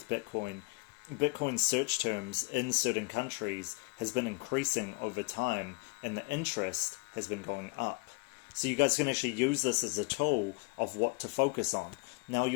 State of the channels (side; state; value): right; quieter; 29.2 dB